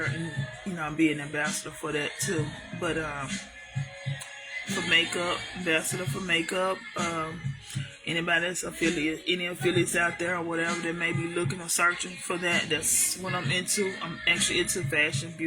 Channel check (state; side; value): identical; both; correlation 1.00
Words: and be an ambassador for that too. But for makeup, ambassador for makeup. Anybody that's any affiliates out there or whatever that may be looking or searching for that, that's what I'm into. I'm actually into fashion,